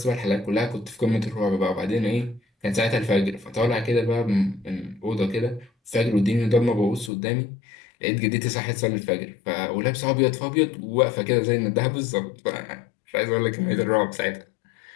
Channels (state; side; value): drops out; right; at 7.1 s